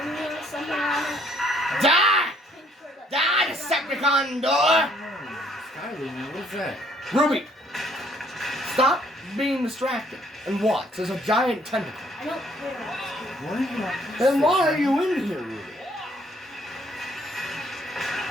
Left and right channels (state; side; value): normal; both; correlation 0.64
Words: blue or something on it. Die! Pink shirt that- Die, Decepticon door! Oh, Skyler, man, what's that? Ruby, stop being distracted and watch. There's a giant tentacle. I don't care. What are you on? Then why are you in here, Ruby?